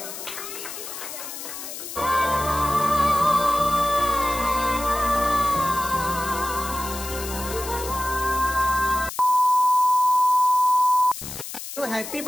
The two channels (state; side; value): noise; left; hiss, 9 dB below the sound